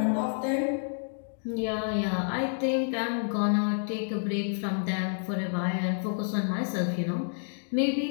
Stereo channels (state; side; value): silent; right; digital silence